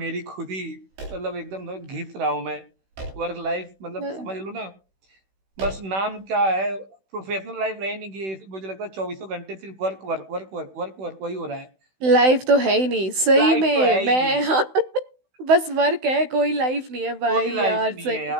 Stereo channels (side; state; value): left; late; 16 ms